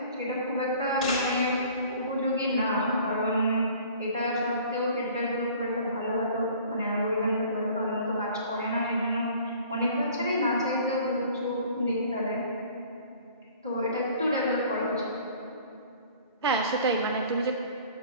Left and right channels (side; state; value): both; inverted; correlation -0.50